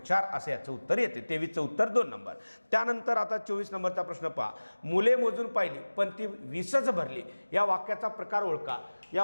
असं याचं उत्तर येते. 23चं उत्तर 2 नंबर. त्यानंतर आता 24 नंबरचा प्रश्न पहा. मुले मोजून पाहिली पण ती 20च भरली. या वाक्याचा प्रकार ओळखा.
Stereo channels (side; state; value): both; inverted; correlation -1.00